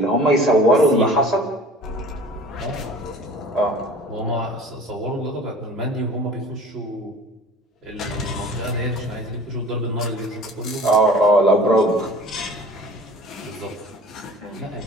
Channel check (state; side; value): normal; both; correlation 0.45